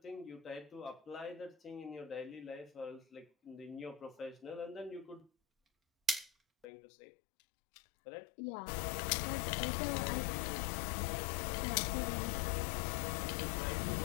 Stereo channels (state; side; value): drops out; right; at 6.7 s